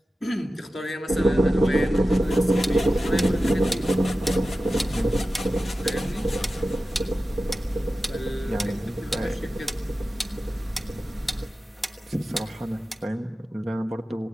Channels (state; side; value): normal; both; correlation 0.94